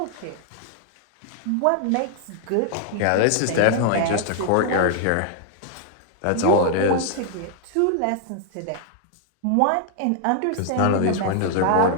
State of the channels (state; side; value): different; both; correlation 0.00